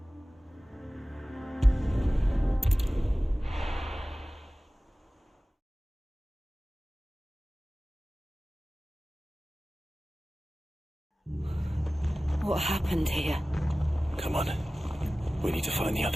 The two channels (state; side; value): normal; both; correlation 0.97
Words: What happened here? Come on. We need to find the